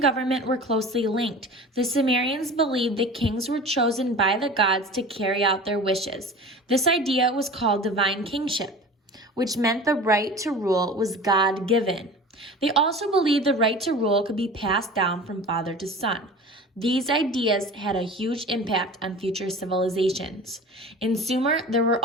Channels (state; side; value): normal; both; correlation 0.38